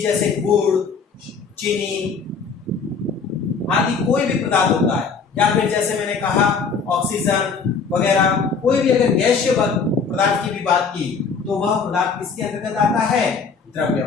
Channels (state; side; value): quieter; right; 5.3 dB